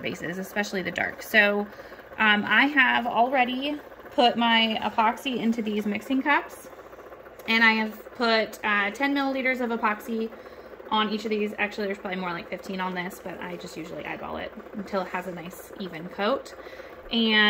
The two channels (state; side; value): identical; both; correlation 1.00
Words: especially the dark. So I have already put my epoxy into these mixing cups, and I have put 10 milliliters of epoxy on each of these. Actually, there's probably more like 15 on this, but I just usually eyeball it until it has a nice even coat.